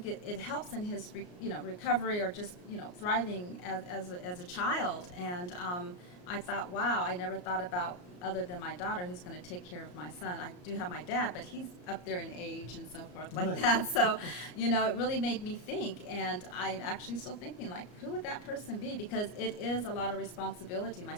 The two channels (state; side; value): late; right; 34 ms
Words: it helps in his recovery, or just thriving as a child. And I thought, wow, I never thought about other than my daughter who's going to take care of my son. I do have my dad, but he's up there in age and so forth like that. So, it really made me think, and I'm actually still thinking, like, who would that person be? Because it is a lot of responsibility. My